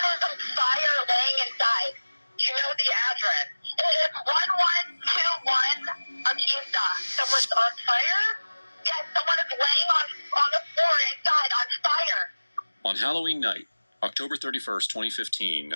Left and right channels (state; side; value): inverted; both; correlation -1.00